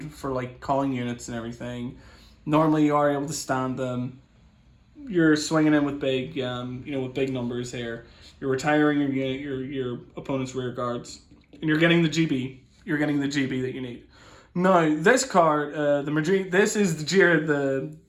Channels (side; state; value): both; identical; correlation 1.00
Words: for like calling units and everything. Normally you are able to stand them. You're swinging in with big, with big numbers here. You're retiring your opponent's rear guards, and you're getting the GB. You're getting the GB that you need. Now this card, this is the